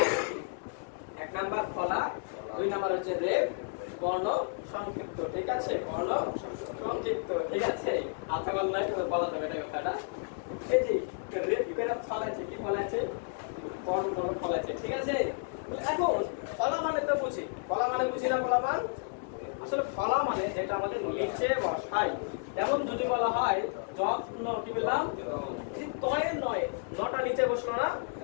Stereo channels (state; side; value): silent; right; 57 dB below the other